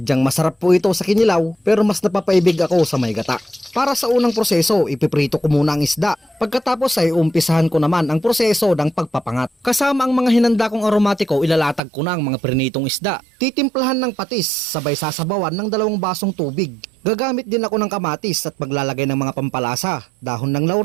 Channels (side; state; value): left; drops out; at 11.8 s